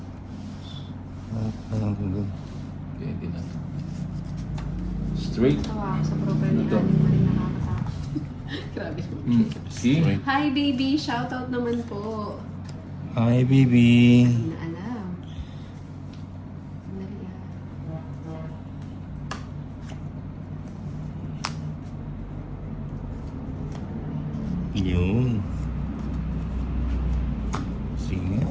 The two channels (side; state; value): both; identical; correlation 1.00